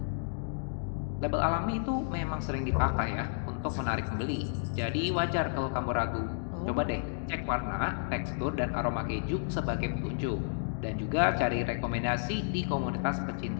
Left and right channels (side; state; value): right; silent; digital silence